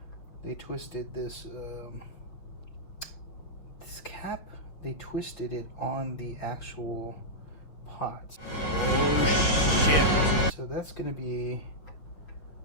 this this cap. They twisted it on the actual pot. Oh shit! So that's going to be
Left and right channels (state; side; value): late; right; 6.1 ms